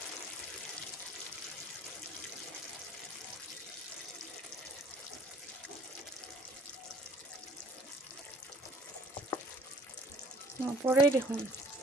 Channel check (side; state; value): both; normal; correlation 0.55